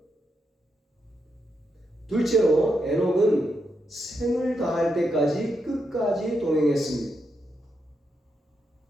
둘째로 에녹은 생을 다할 때까지 끝까지 동행했습니다.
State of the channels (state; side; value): normal; both; correlation 0.83